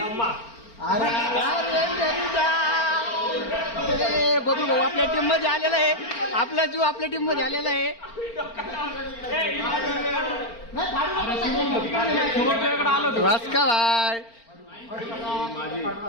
अरे बघू भाऊ आपल्या टीम मध्ये आलेला आहे. आपला जीव आपल्या टीम मध्ये आलेला आहे. वास्का भाई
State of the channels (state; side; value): late; right; 4.4 ms